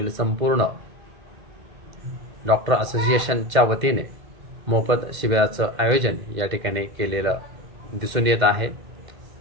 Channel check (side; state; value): left; late; 2.1 ms